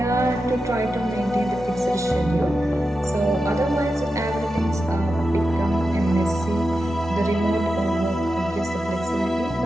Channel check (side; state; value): both; normal; correlation 0.90